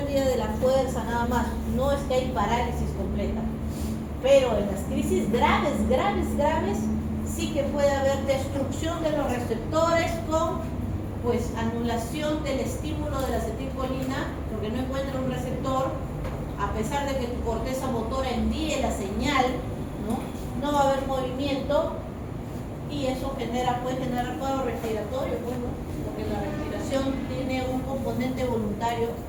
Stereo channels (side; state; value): both; identical; correlation 1.00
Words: de la fuerza, nada más. No es que hay parálisis completa. Pero en las crisis graves, sí que puede haber destrucción de los receptores con pues anulación del estímulo de la acetilcolina, porque no encuentra un receptor, a pesar de que tu corteza motora envíe la señal, no va a haber movimiento y eso puede generar cuadro respiratorio, bueno, porque la respiración tiene un componente voluntario